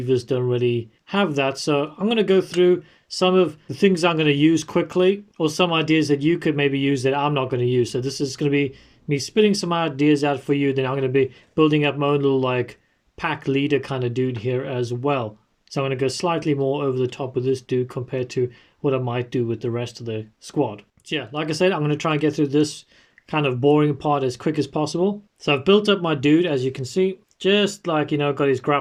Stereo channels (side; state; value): both; identical; correlation 1.00